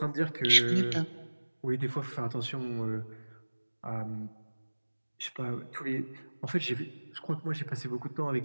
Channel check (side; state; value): both; inverted; correlation -1.00